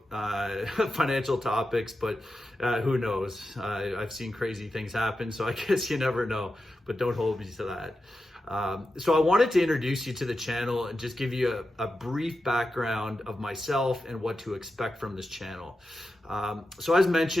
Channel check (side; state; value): both; normal; correlation 0.90